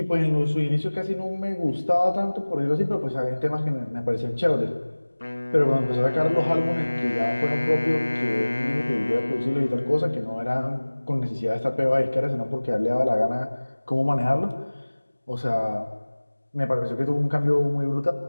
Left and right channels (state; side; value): inverted; both; correlation -1.00